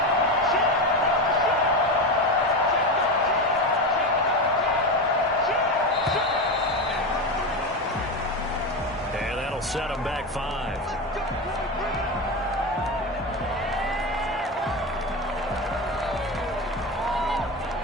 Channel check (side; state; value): both; normal; correlation 0.18